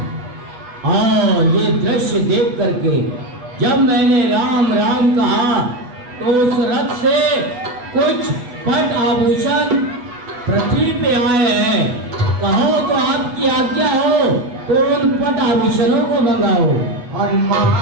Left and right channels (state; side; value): late; left; 8.1 ms